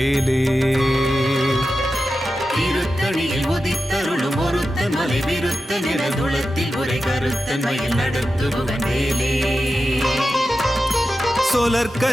திருத்தணியில் உதித்தருளும் ஒருத்தன் மலை விருத்தன் எனதுளத்தில் உரை கருத்தன் மயில் நடத்து குகன் வேலே.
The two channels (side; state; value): both; normal; correlation 0.92